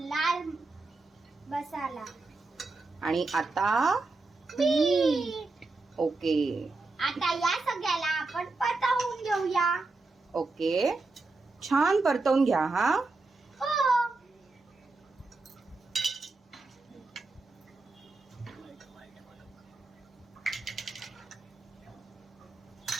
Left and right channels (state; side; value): quieter; left; 3.5 dB